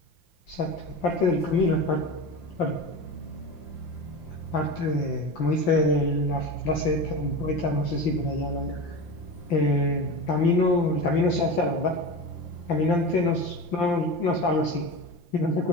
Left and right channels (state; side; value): late; right; 5.8 ms